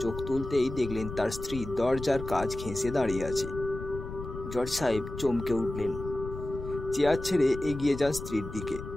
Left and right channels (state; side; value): noise; left; rumble, 9 dB below the sound